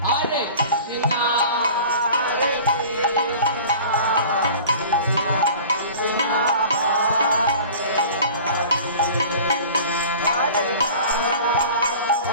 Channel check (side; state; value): both; inverted; correlation -0.42